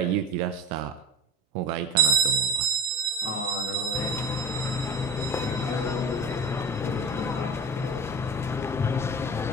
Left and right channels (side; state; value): both; normal; correlation 0.27